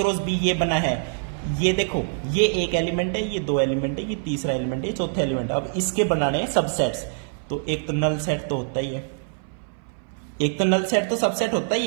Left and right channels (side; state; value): left; silent; 59 dB below the other